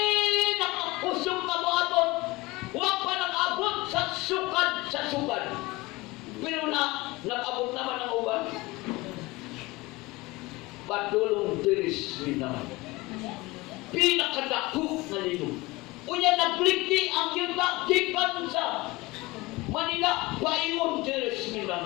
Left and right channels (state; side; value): quieter; right; 21.8 dB